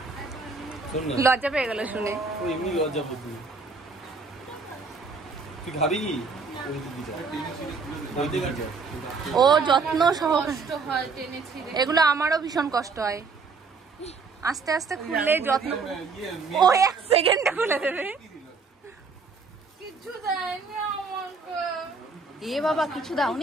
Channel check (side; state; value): left; quieter; 4.6 dB